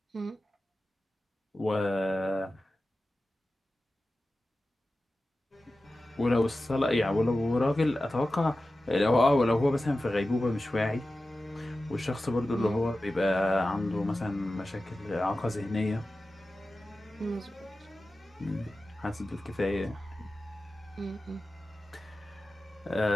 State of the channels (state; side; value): normal; both; correlation 0.94